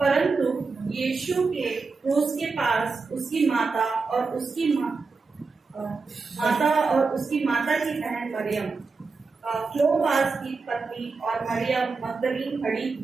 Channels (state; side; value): quieter; left; 4.4 dB